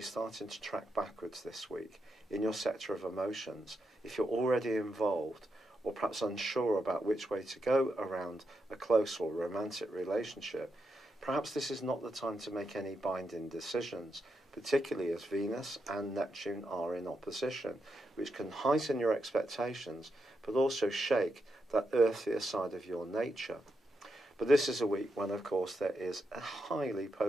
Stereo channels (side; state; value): both; normal; correlation 0.84